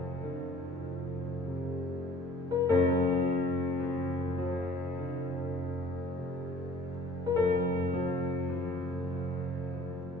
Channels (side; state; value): both; normal; correlation 0.51